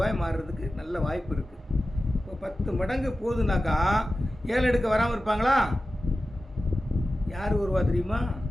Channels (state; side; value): normal; both; correlation 0.95